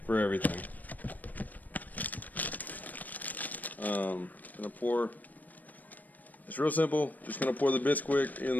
for everything. Gonna pour. It's real simple. Just gonna pour the Bisquick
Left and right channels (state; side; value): late; right; 0.082 ms